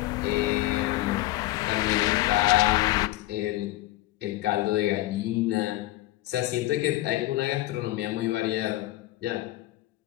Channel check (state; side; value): quieter; right; 16.7 dB